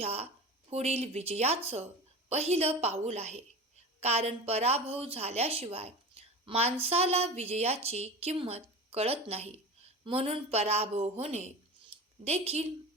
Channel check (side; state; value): both; normal; correlation 0.31